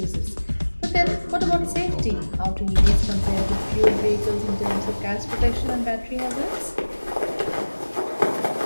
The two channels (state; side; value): inverted; both; correlation -1.00